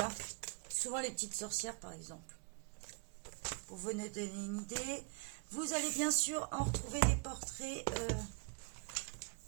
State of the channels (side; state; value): left; quieter; 35.1 dB